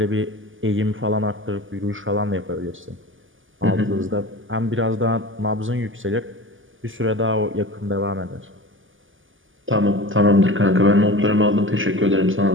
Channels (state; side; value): late; left; 0.58 ms